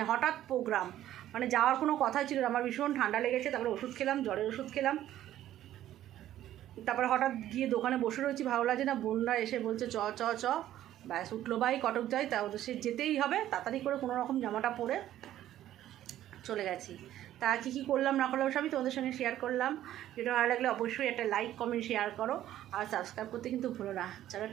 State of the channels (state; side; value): quieter; left; 12.7 dB